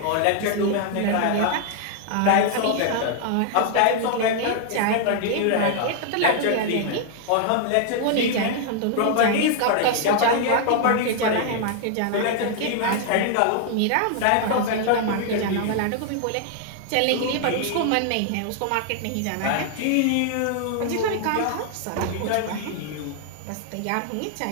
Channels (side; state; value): both; different; correlation 0.00